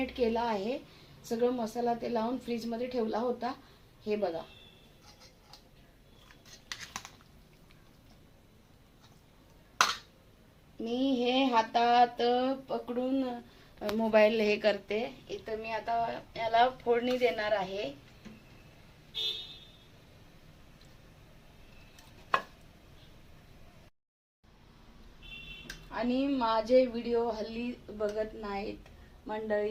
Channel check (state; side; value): identical; both; correlation 1.00